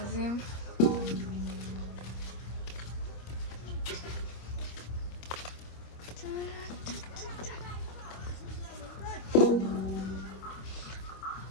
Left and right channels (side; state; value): right; late; 25 ms